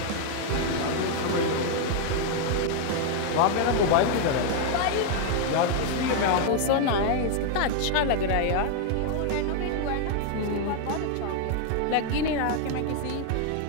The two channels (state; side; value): different; both; correlation 0.00